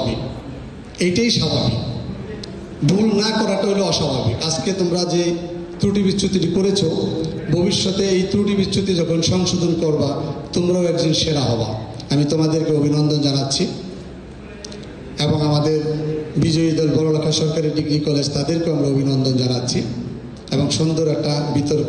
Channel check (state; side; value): identical; both; correlation 1.00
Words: এইটাই স্বাভাবিক, ভুল না করাটা হলো অস্বাভাবিক। আজকে তোমরা যে ত্রুটি বিচ্যুতিটি করেছো, ভবিষ্যতে এই ত্রুটি বিচ্যুতি যখন সংশোধন করবা তোমরাও একজন সেরা হবা। আমি তোমাদেরকে অভিনন্দন জানাচ্ছি এবং আমাদের বিজয়ী দল বড়লেখা সরকারি ডিগ্রি কলেজ, তাদেরকেও আমরা অভিনন্দন জানাচ্ছি এবং সুন্দর একটা